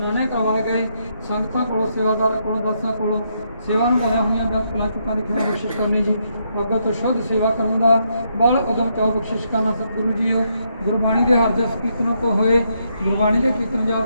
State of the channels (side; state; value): both; inverted; correlation -0.77